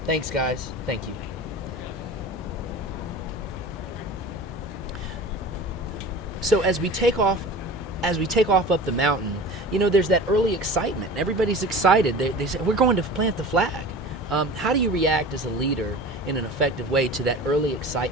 Thanks, guys. Thank you. So as we take off up the mountain, there's that early excitement. Everybody's excited. They say, we're going to plant the flag. How do you react as a leader in an effective way to that early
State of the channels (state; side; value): normal; both; correlation 0.37